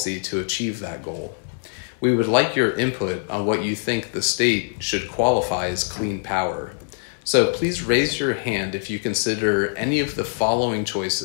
to achieve that goal. We would like your input on what you think the state should qualify as clean power. So please raise your hand if you consider any of the following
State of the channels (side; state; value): right; silent; 58 dB below the other